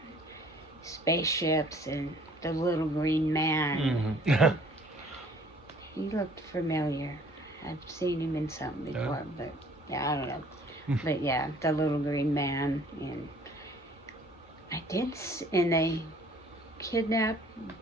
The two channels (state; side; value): normal; both; correlation 0.56